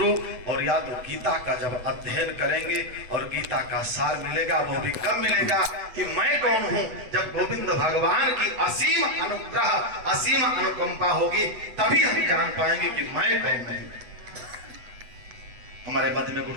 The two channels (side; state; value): left; late; 8.1 ms